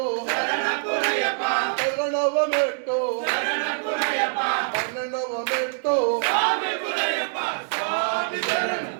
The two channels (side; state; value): left; silent; 62 dB below the other